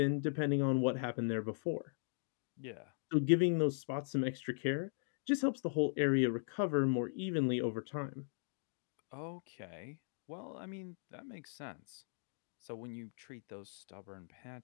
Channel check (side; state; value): right; silent; digital silence